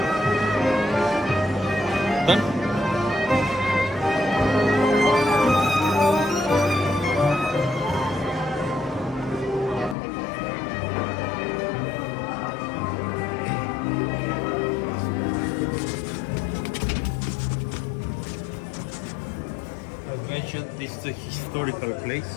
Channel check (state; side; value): drops out; right; at 10.0 s